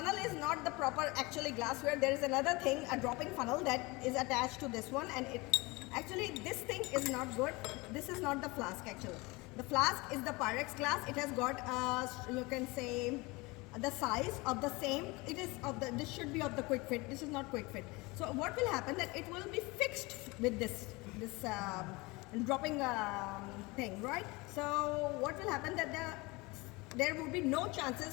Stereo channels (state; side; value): quieter; right; 24.3 dB